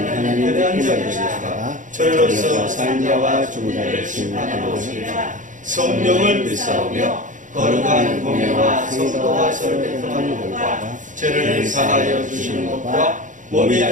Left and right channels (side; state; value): left; late; 0.37 ms